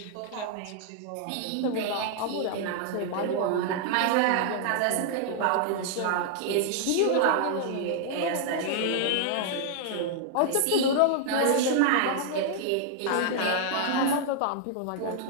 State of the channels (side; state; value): both; different; correlation -0.01